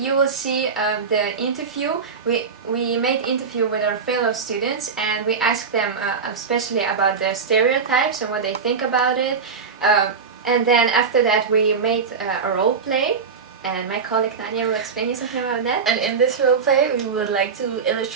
will see the interview. We made interview with our fellow students and we asked them especially about the stereotypes and what they think about it. And then after that we made a role play. And my colleague Nadia will explain you something about that. And in this role play, we would like to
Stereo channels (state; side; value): quieter; left; 5.5 dB